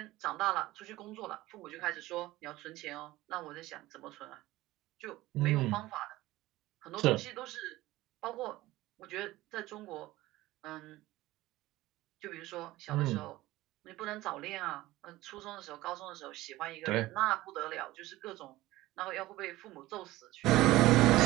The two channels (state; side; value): quieter; left; 17.6 dB